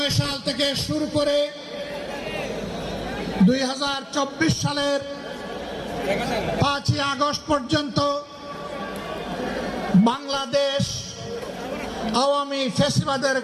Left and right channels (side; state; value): both; identical; correlation 1.00